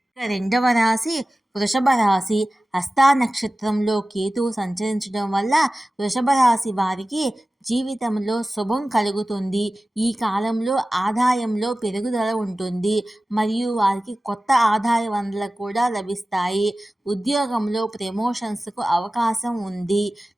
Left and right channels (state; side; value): normal; both; correlation 0.96